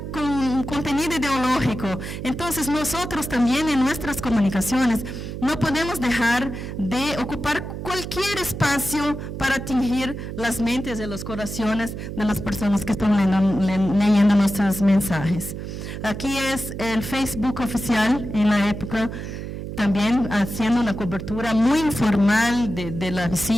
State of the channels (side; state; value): right; noise; hum, 7 dB below the sound